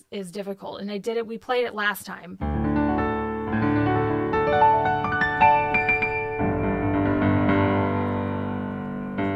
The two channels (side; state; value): both; identical; correlation 1.00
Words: is difficult. And we played it last time.